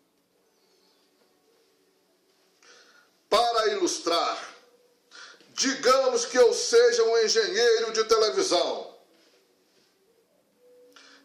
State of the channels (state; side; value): identical; both; correlation 1.00